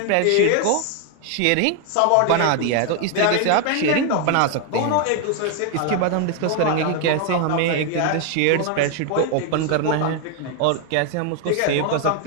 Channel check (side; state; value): both; different; correlation 0.01